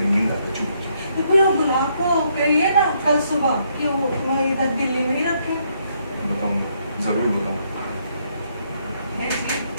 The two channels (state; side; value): inverted; both; correlation -0.72